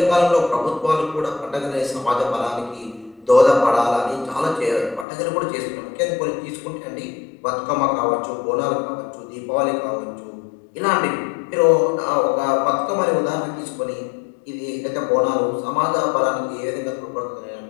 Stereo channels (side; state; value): right; drops out; at 5.1 s